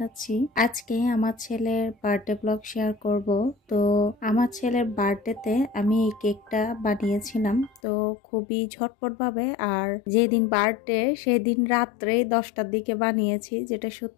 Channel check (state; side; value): drops out; right; at 7.8 s